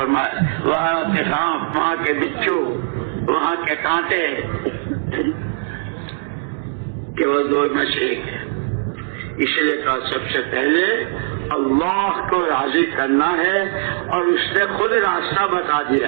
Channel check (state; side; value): silent; left; digital silence